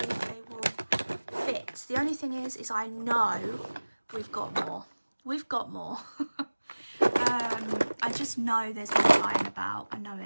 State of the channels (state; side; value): inverted; both; correlation -1.00